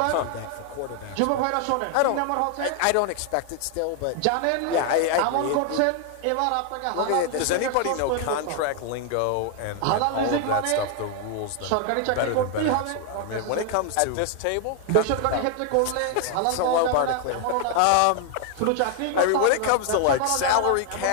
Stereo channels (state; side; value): different; both; correlation 0.00